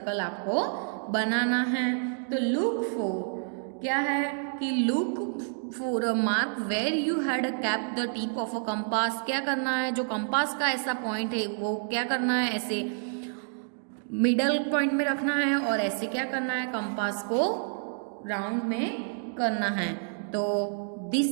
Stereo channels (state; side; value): silent; left; digital silence